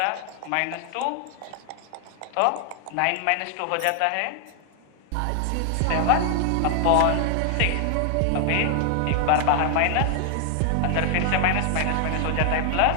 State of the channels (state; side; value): different; both; correlation 0.00